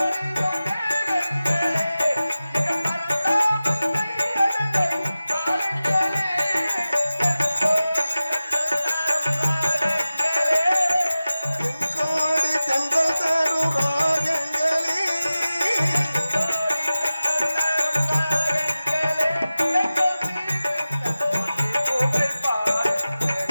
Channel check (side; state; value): both; inverted; correlation -0.95